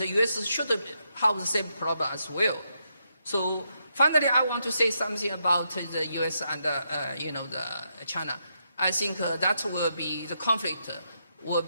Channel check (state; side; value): inverted; both; correlation -0.81